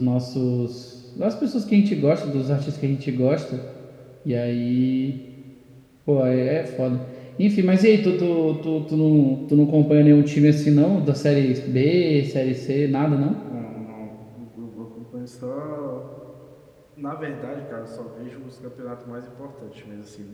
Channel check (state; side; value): identical; both; correlation 1.00